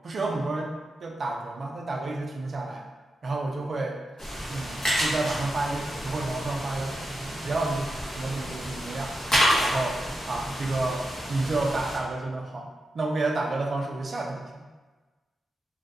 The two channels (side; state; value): both; normal; correlation 0.88